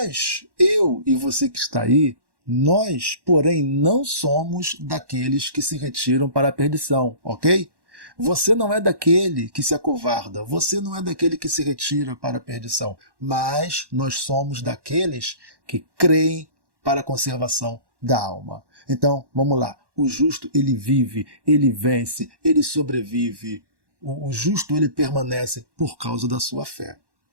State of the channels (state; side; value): late; left; 1.1 ms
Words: eu e você que está aí, nós, porém, não somos daqueles que se retiram para a perdição, ok? Você não é daquele que se acovarda, você não é daquele que se retira para a perdição, mas nós somos daqueles que creem para a conservação da alma. Então, vamos lá. O justo, ele vive, ele vence, ele sobrevive. O justo, ele permanece por causa da sua fé.